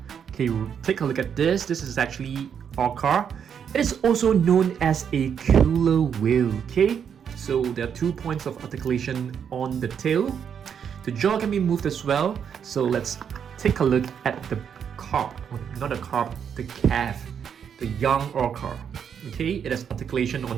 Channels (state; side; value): quieter; left; 7.7 dB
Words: Okay, take a look at this. This is actually otter. It is also known as a killer whale. Okay, so there are 2 points of articulation on the tail. The jaw can be moved as well. So let's take a look at the the calf, the young otter. Okay, it has articulation